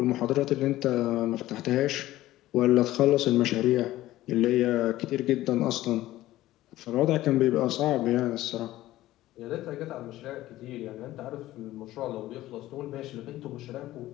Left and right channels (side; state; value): right; quieter; 15.6 dB